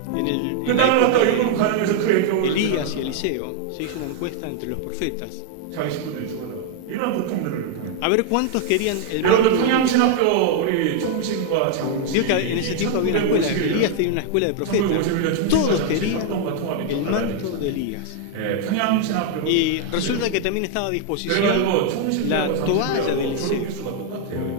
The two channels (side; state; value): both; different; correlation 0.00